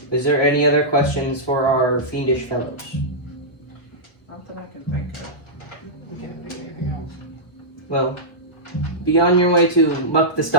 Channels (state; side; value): late; right; 1.2 ms